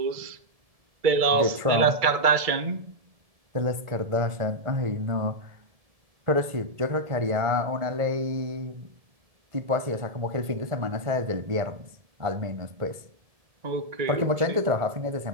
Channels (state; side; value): late; left; 1.7 ms